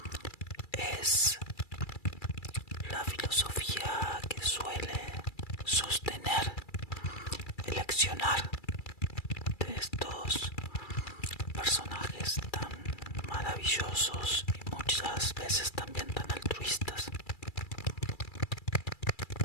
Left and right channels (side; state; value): right; late; 2.3 ms